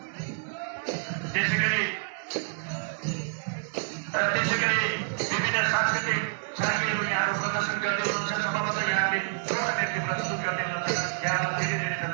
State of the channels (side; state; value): left; silent; digital silence